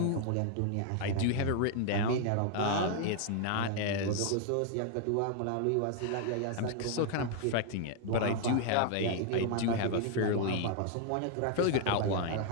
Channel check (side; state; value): both; different; correlation 0.00